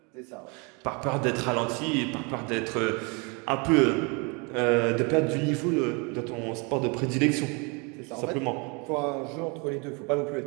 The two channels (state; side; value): quieter; left; 31.2 dB